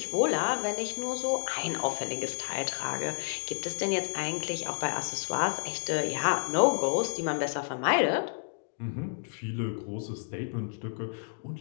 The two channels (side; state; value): right; silent; 57 dB below the other